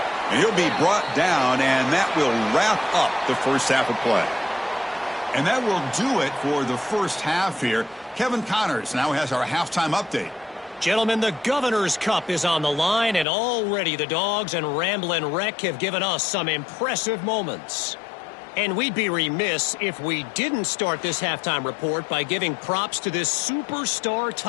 And he'll be brought down, and that will wrap up the first half of play. And that will do it for the first half here. Kevin Connors now has our halftime update. Gentlemen, the Governor's Cup is on the line, and already the Dogs and Ramblin' Wreck have given us some impressive moments. And we'd be remiss if we didn't start this halftime report by giving props to this superstar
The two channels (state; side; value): drops out; right; at 13.2 s